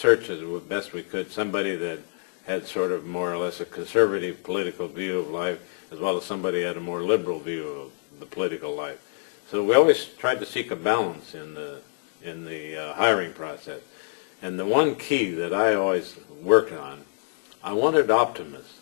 as best we could somebody that had sort of more or less a conservative political view of life, as well as somebody had a more liberal view of the political life. So we always tried to seek a balance in the hiring process. And the one key that I always worked on, I wanted optimists.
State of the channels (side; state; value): right; silent; digital silence